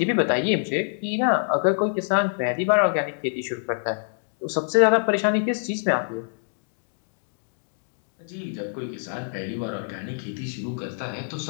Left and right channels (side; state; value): right; silent; digital silence